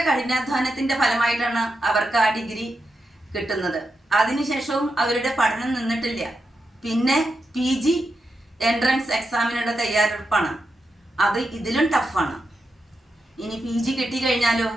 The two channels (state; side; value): normal; both; correlation 0.87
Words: കഠിനാധ്വാനത്തിന്റെ ഫലമായിട്ടാണ് അവർക്ക് ആ ഡിഗ്രി കിട്ടുന്നത്. അതിനുശേഷവും അവരുടെ പഠനം നിന്നിട്ടില്ല. പിന്നെ PG എൻട്രൻസ് എക്സാമിനുള്ള തയ്യാറെടുപ്പാണ്. അത് ഇതിലും ടഫാണ്. ഇനി PG കിട്ടിക്കഴിഞ്ഞാലോ